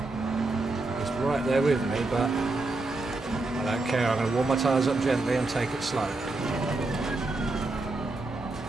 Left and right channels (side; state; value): left; quieter; 3.2 dB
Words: He's right there with me, but I don't care. I'm going to warm my tyres up gently and take it slow.